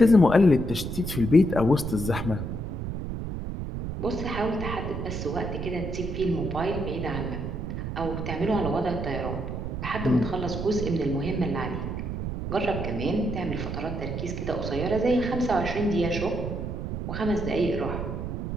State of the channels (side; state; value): right; noise; rumble, 4 dB below the sound